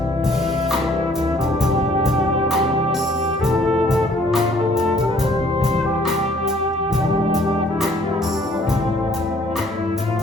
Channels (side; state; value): both; normal; correlation 0.60